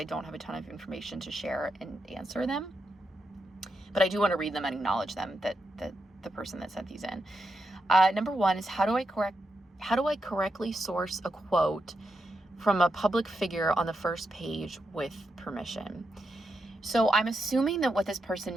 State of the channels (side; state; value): both; normal; correlation 0.85